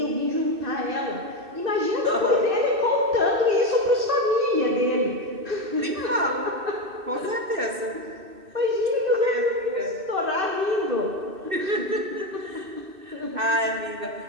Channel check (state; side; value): late; left; 2.6 ms